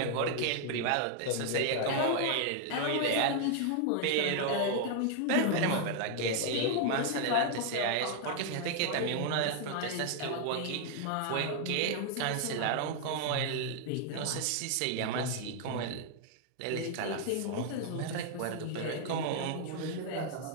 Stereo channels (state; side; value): different; both; correlation 0.00